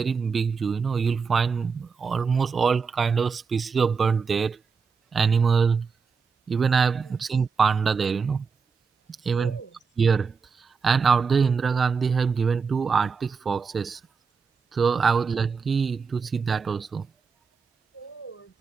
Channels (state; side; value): quieter; left; 5.4 dB